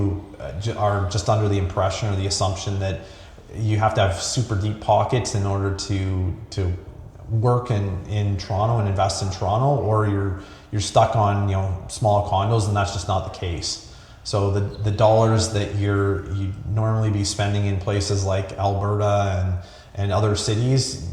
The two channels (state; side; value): identical; both; correlation 1.00